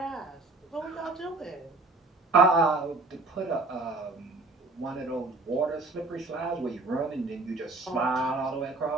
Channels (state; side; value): quieter; left; 3.2 dB